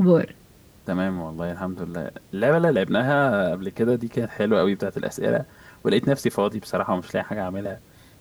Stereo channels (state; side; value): identical; both; correlation 1.00